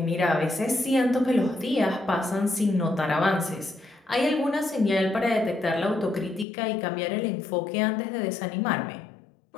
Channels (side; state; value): right; drops out; at 6.5 s